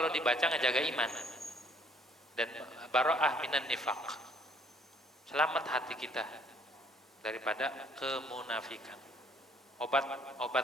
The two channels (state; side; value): normal; both; correlation 0.62